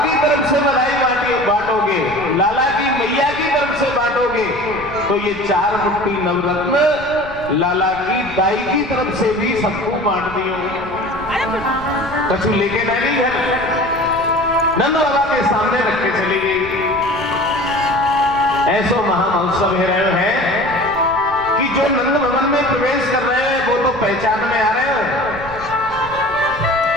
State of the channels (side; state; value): right; noise; rumble, 16 dB below the sound